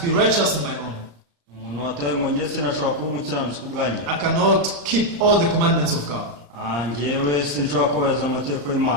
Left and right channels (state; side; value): late; left; 35 ms